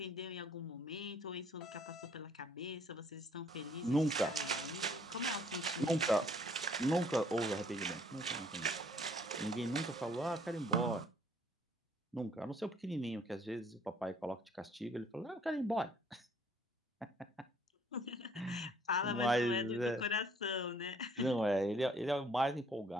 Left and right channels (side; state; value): both; normal; correlation 0.61